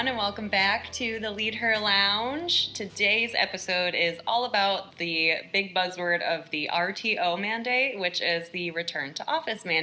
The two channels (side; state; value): both; identical; correlation 1.00